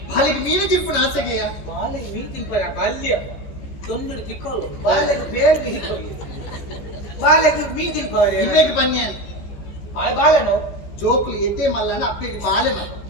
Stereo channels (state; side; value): late; right; 15 ms